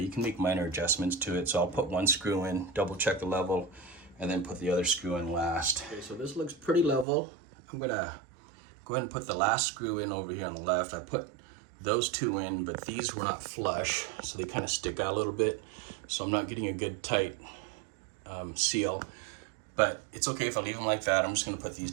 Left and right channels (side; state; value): left; drops out; at 7.1 s